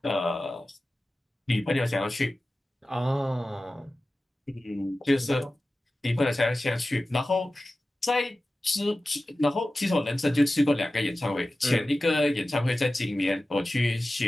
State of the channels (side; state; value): both; normal; correlation 0.95